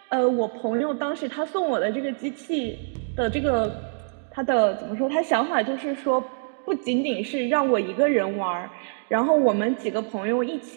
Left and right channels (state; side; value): silent; left; digital silence